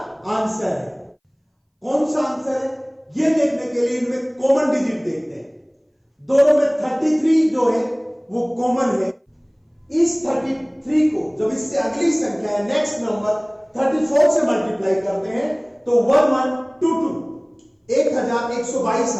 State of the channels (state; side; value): identical; both; correlation 1.00